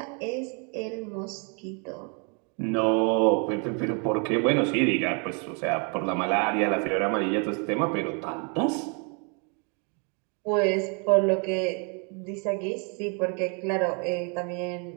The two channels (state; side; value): quieter; left; 36.9 dB